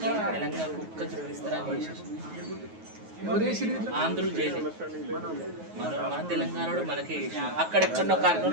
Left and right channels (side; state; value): left; late; 9.4 ms